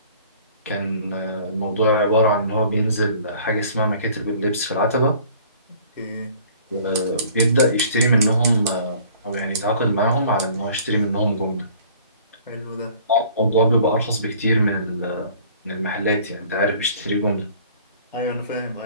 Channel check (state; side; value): inverted; both; correlation -0.52